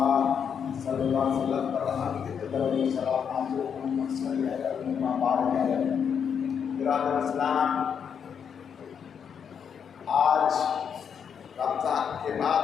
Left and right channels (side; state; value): right; quieter; 7.3 dB